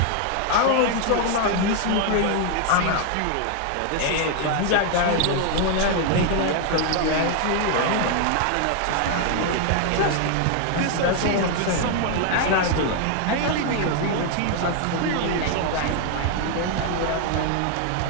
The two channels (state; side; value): different; both; correlation 0.00